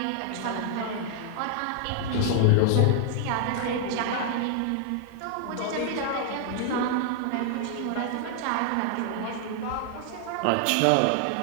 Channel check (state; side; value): different; both; correlation 0.00